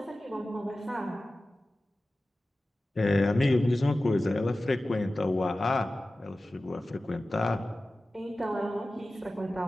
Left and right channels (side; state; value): both; normal; correlation 0.96